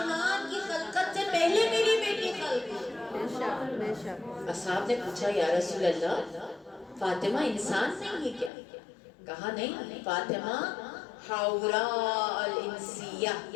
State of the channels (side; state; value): right; drops out; at 8.5 s